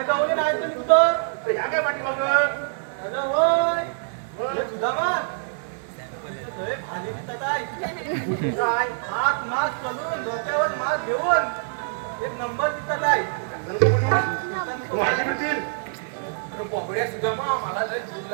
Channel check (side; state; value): left; silent; digital silence